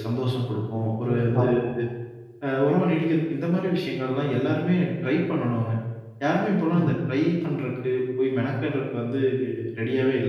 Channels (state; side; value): identical; both; correlation 1.00